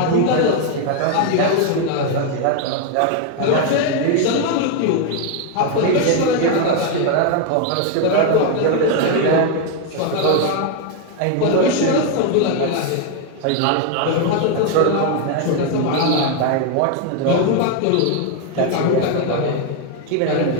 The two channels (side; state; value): both; different; correlation 0.01